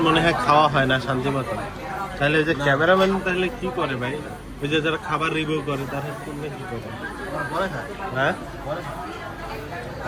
মনে হয় খাওয়া হয় না শান্তি মতো। তাহলে ওই যে ক্যামেরাম্যান তাহলে কি করে ভাই? ওই যে যারা খাবার রিভিউ করে তারা কি করে? হ্যাঁ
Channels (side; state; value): both; identical; correlation 1.00